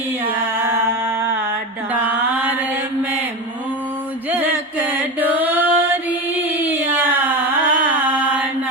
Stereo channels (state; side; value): normal; both; correlation 0.22